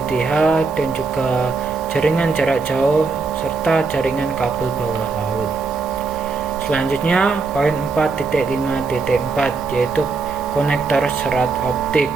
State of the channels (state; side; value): quieter; left; 4.3 dB